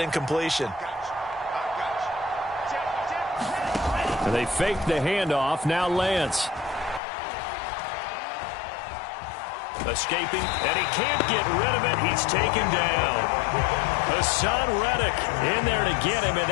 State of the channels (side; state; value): right; drops out; at 7.0 s